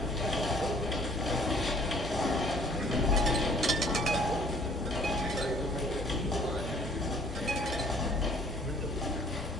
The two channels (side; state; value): both; normal; correlation 0.57